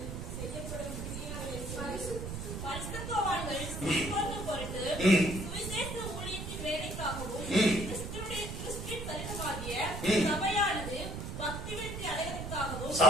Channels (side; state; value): right; noise; rumble, 6 dB below the sound